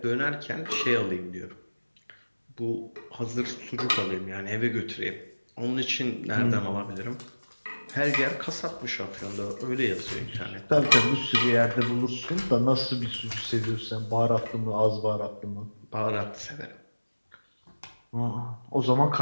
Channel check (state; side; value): inverted; both; correlation -1.00